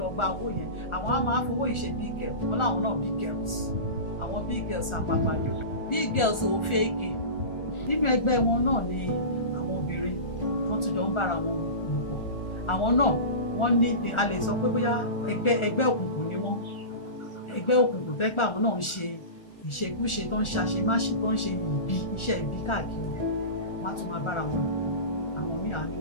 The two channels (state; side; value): late; right; 1.4 ms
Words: gba owó yẹn. Àwọn á máa fowó ìṣe big girl, wọn láwọn náà big girls. Àwọn big girls àpapàdé. Big girls ò fẹ́ẹ̀kì. Nínú ẹgbẹ́ wọn náà ni àwọn obìnrin wọ́n tún jọ ń bára wọn lò pọ̀. Àwọn náà wọ́n ní a lè sọ pé bóyá ẹgbẹ́ òkùnkùn ni wọ́n. Ẹgbẹ́ òkùnkùn tẹ́ pé àwọn náà ń ṣe ìṣekúṣe tó ń ṣàṣemáṣe tó ń ṣe iṣẹ́ ibi káàkiri. Wọ́n á tún máa bára wọn lò. Àwọn míì á ní